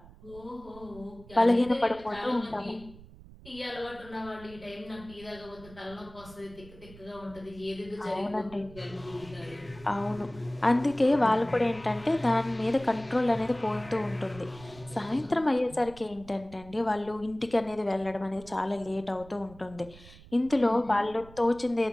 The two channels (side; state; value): right; noise; rumble, 20 dB below the sound